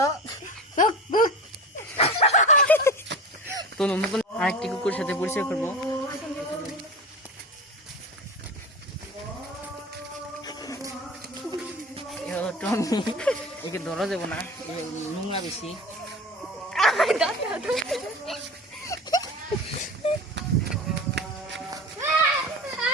তো নতুন আরেকটি কুকুরের সাথে পরিচয় করবো। টমি, একে ধরা যাবো না, নোংরা বেশি।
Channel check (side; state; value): both; normal; correlation 0.32